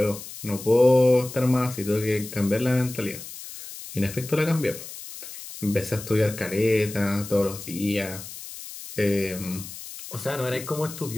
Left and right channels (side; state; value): left; noise; hiss, 12 dB below the sound